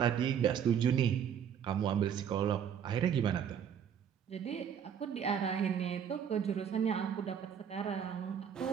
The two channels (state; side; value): quieter; left; 8.3 dB